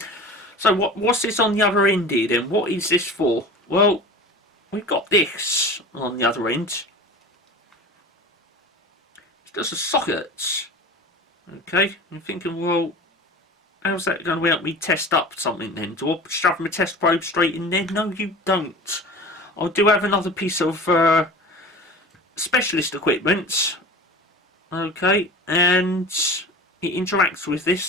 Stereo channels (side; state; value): both; normal; correlation 0.36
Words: So what's this on the other end here then? What is this for? Well, we've got this on the other end. It's just a socket. Okay, I'm thinking, well, how's that going to help me test up something then? Do I shove my test probe straight in there? No, you don't. I do have another piece of specialist equipment, okay, and it interacts with